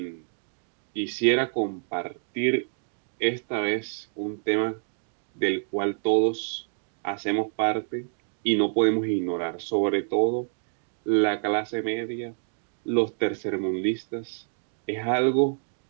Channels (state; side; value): silent; left; digital silence